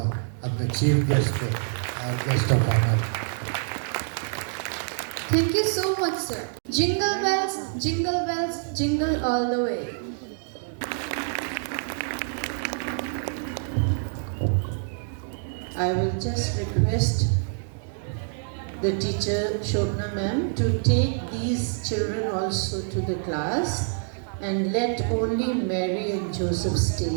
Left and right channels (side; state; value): left; silent; digital silence